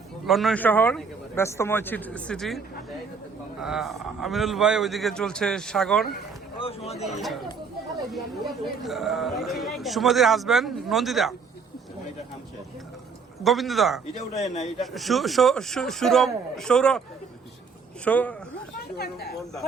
লন্ডন শহর ব্যস্তময় সিটি। আমিনুল ভাই ওইদিকে চলছে সাগর, সুমতির হাজবেন্ড নন্দিতা, গোবিন্দদা, সৌরভ,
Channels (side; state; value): left; quieter; 5.3 dB